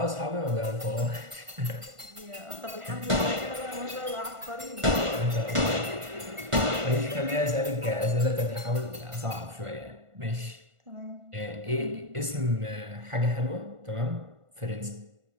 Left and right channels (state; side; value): late; left; 1.5 ms